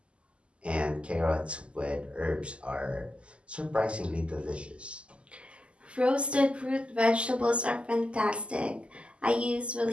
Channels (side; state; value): left; late; 0.054 ms